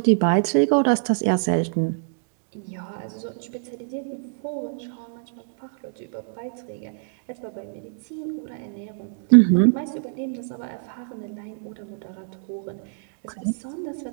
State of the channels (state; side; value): silent; left; digital silence